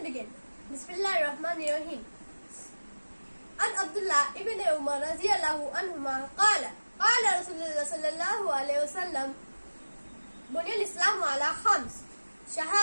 begin. Bismillahirrahmanirrahim. An Abdullah ibn Umar radiyallahu anhuma qala Rasulullah sallallahu alayhi wasallam Bunyal Islam ala Khams.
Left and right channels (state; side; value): inverted; both; correlation -1.00